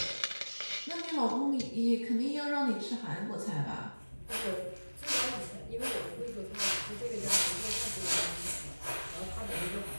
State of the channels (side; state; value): both; inverted; correlation -1.00